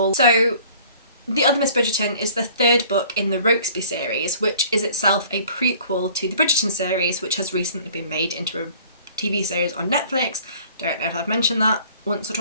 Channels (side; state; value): both; inverted; correlation -0.51